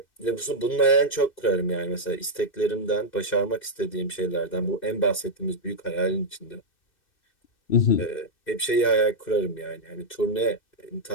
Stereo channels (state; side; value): late; right; 2.6 ms